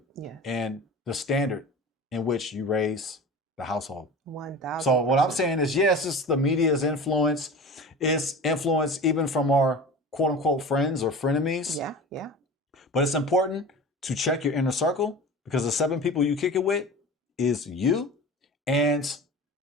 Yeah. And the standard in which you raise the household. 1,000%. So what I'm saying is, yes, it's the media's influence. It's influence even from our quote unquote friends or frenemies. Yeah, yeah. But it's important to check your inner circle because the 7 people you kick it with is you. And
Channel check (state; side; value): normal; both; correlation 0.35